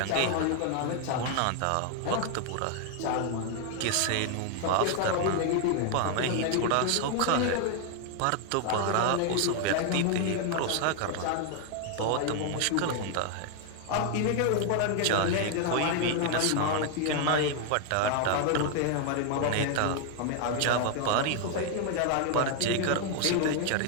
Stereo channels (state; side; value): different; both; correlation 0.00